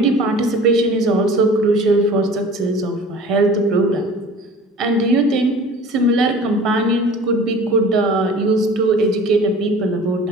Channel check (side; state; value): both; normal; correlation 0.44